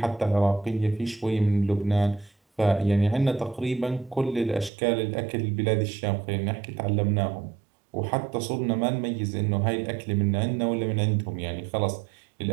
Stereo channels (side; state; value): left; drops out; at 4.7 s